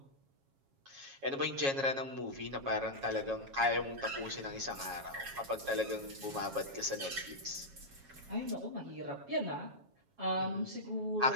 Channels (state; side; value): late; left; 7.3 ms